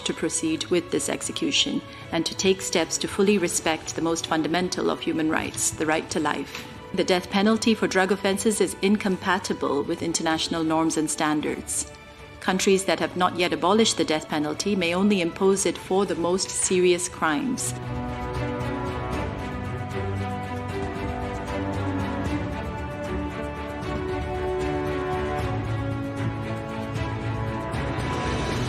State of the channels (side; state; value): both; identical; correlation 1.00